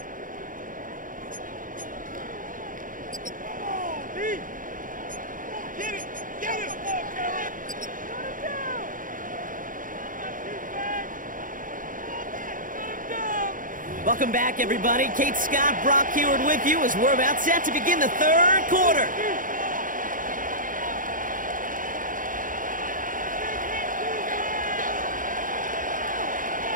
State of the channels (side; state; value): left; late; 0.39 ms